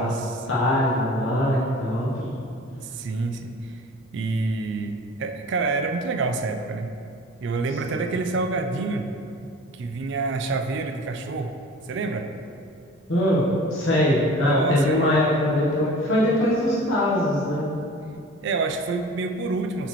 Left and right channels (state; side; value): normal; both; correlation 0.42